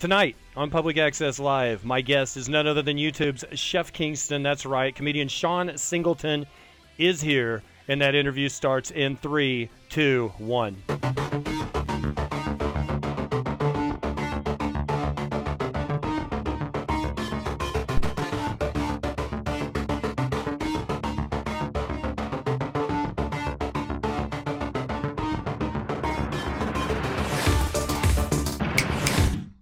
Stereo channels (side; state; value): both; identical; correlation 1.00